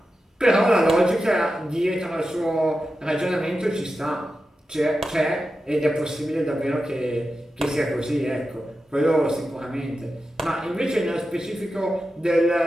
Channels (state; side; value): normal; both; correlation 0.91